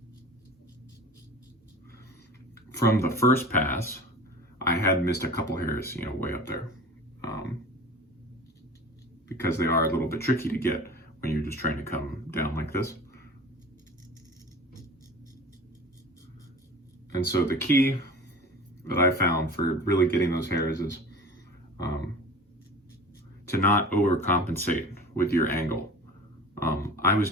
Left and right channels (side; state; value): both; normal; correlation 0.38